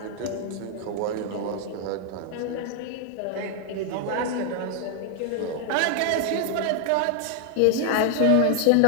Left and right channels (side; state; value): both; different; correlation 0.00